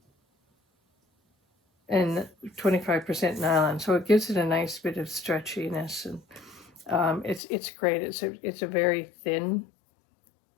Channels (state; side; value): drops out; right; at 7.4 s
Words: and 25% nylon, so it gives it a nice bit of stretchiness, and it's great. It's a very thin